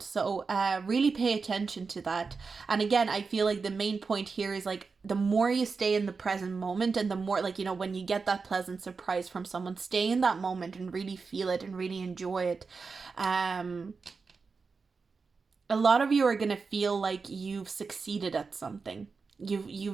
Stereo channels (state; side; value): quieter; left; 4.7 dB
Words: So really pay attention to that. And again, I feel like the main point here is like the more you stay in the present moment and the more like, you know, when you get that pleasant surprise from someone, stay in that moment and really feel it and really enjoy it. A lot of you are gonna feel like you've succeeded at something.